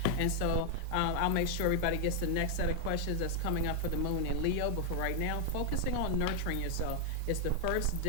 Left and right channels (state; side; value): different; both; correlation 0.00